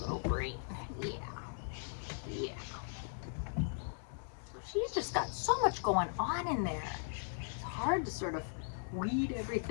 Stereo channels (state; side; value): silent; right; digital silence